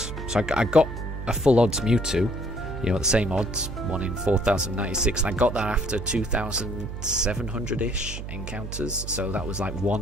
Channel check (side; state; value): right; noise; hum, 8 dB below the sound